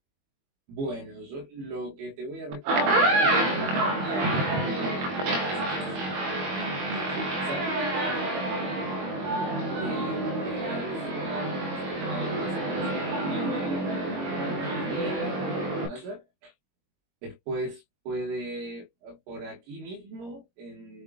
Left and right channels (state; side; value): late; left; 22 ms